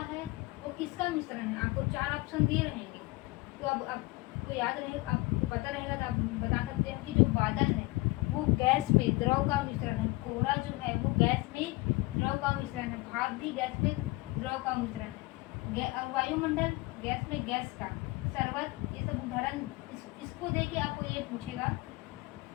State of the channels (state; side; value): quieter; right; 22.0 dB